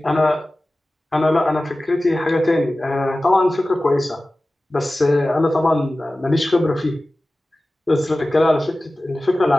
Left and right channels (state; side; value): normal; both; correlation 0.96